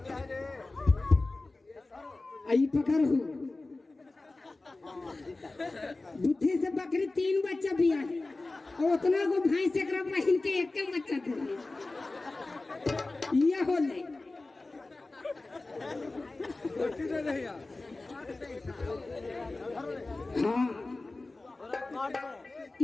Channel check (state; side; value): quieter; right; 3.2 dB